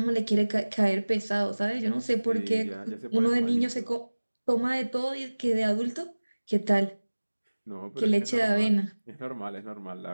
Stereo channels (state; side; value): inverted; both; correlation -1.00